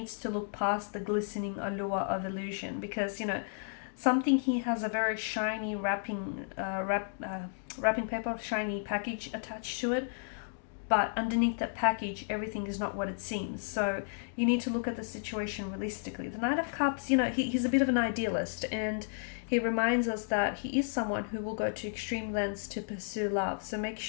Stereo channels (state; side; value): silent; right; digital silence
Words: to look past the glistening allure of illusion, because, something here has a very shiny wrapping paper, shiny package attached to it, but underneath that package, everything is not what it seems. So you need to look at the situation realistically. The Knight of Cups, he's a bit of an idealist, and he reminds us that he is someone who will go to extreme lengths to pursue love. So make